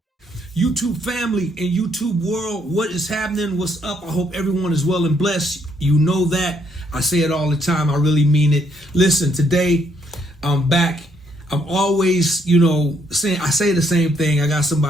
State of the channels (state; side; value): normal; both; correlation 0.71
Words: YouTube family and YouTube world, what is happening? What's up? I hope everyone is well and blessed. You know that. I say it all the time. I really mean it. Listen, today I'm back. I'm always, saying I say the same thing. I got